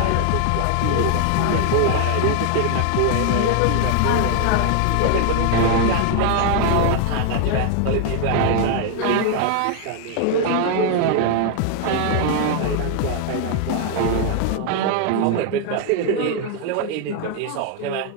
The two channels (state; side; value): different; both; correlation 0.00